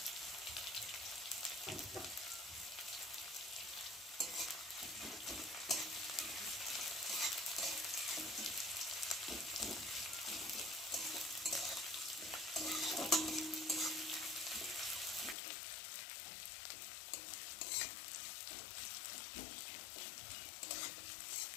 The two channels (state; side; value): drops out; right; at 15.4 s